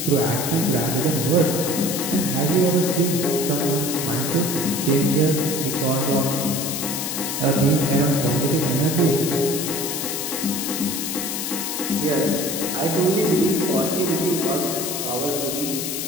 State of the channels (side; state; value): left; noise; hiss, 3 dB below the sound